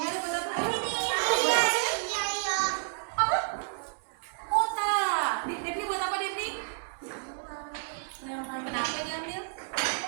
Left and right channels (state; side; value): silent; left; 58 dB below the other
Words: buat apa? Iya, iya, iya. Apa? Kota. Devni buat apa, Devni? Kenapa diambil?